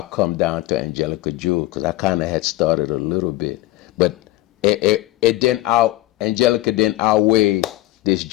come down to Angelica Jewel because I kind of had started a little bit. But Angelica didn't outweigh this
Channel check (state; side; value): quieter; right; 17.3 dB